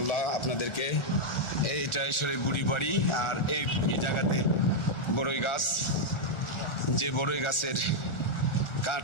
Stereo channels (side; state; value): right; late; 1.4 ms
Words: আপনাদেরকে। এইটা সেই বুড়ির বাড়ি। আর এই জায়গাতে বড়ই গাছ, যে বড়ই গাছের